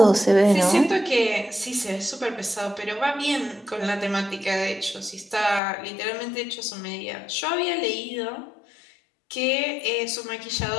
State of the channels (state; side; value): drops out; right; at 5.6 s